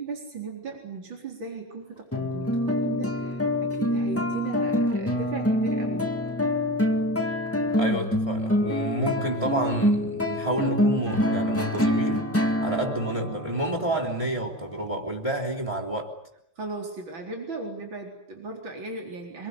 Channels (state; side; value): normal; both; correlation 0.28